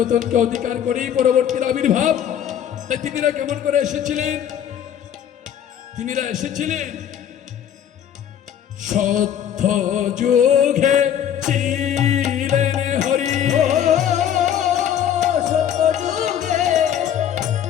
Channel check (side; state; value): right; quieter; 9.5 dB